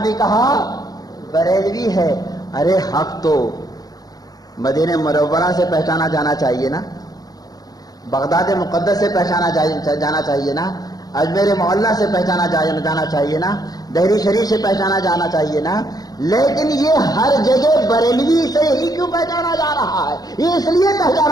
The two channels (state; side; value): late; right; 0.19 ms